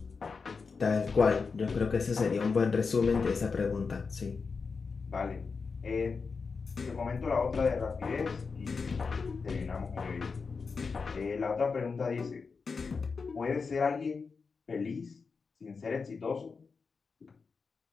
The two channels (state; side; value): quieter; right; 4.9 dB